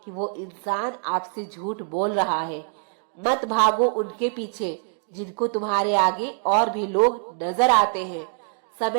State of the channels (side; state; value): left; silent; 56 dB below the other